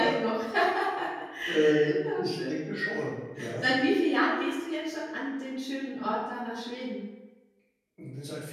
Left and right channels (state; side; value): identical; both; correlation 1.00